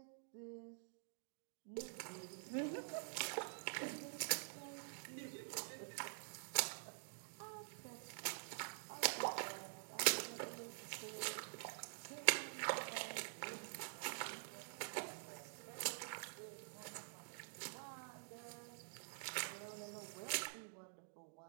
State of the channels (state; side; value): silent; left; digital silence